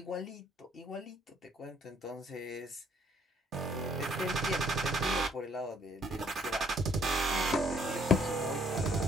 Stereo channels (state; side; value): normal; both; correlation 0.64